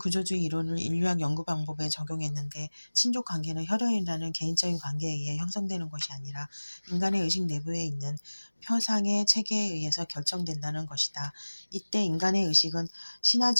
이론을 인류학 연구 방법에 적용했는데 친족 관계는 혈연이라는 개인적인 관계에 의해 형성되는 것이 아니라 인간의 의식 내부에 있는 표상의 체계에 의해서 결정된다는 것이다. 이때 인간의 의식은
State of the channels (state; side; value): inverted; both; correlation -1.00